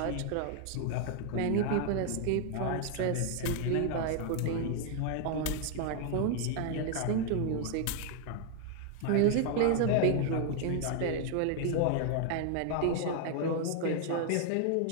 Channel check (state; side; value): different; both; correlation 0.00